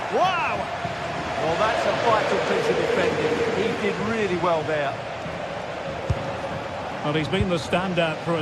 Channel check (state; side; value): identical; both; correlation 1.00